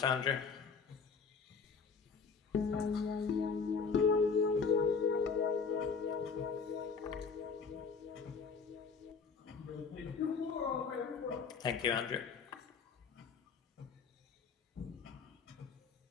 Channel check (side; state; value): right; quieter; 5.4 dB